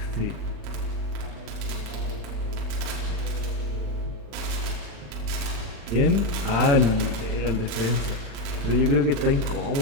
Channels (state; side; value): late; left; 36 ms